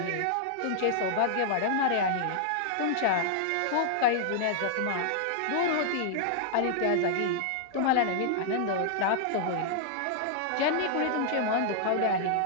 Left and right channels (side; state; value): both; different; correlation -0.01